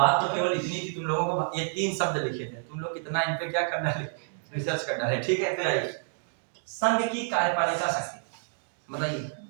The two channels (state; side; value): silent; left; digital silence